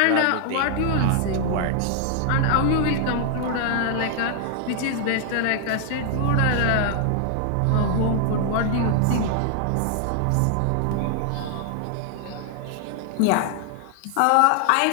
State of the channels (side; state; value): both; different; correlation 0.00